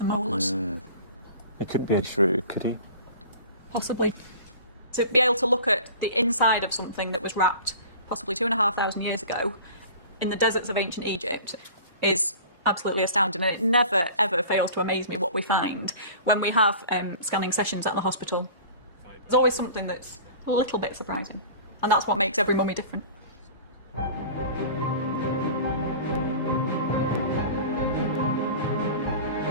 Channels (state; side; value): inverted; both; correlation -0.40